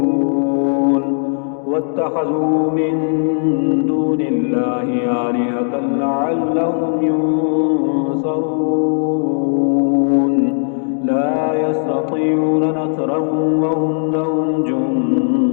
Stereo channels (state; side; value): silent; right; digital silence